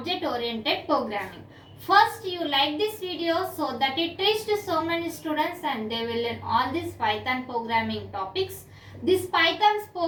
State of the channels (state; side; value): identical; both; correlation 1.00